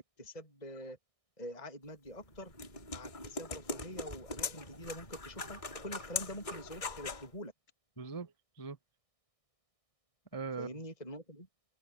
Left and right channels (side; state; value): right; late; 1.6 ms